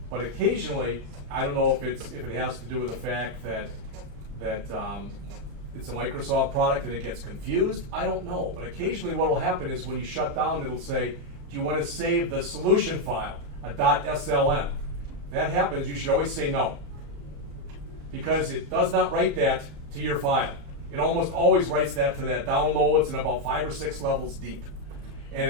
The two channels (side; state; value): left; late; 34 ms